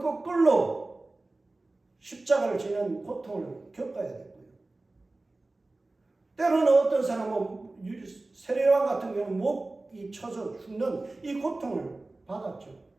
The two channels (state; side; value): quieter; left; 3.1 dB